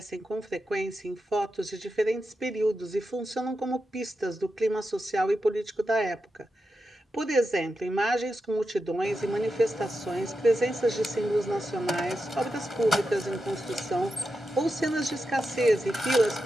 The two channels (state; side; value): normal; both; correlation 0.89